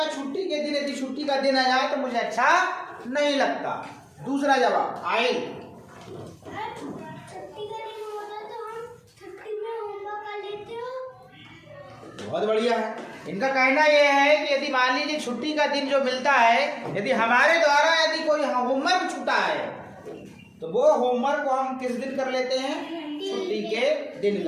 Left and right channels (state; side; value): identical; both; correlation 1.00